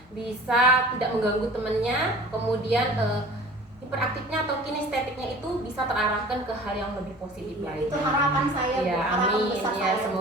bisa tidak mengganggu temannya, kemudian hiperaktifnya atau kinestetiknya itu bisa terarahkan ke hal yang lebih positif lagi. Itu harapan saya Bu, harapan besar ya, saya.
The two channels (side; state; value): both; normal; correlation 0.44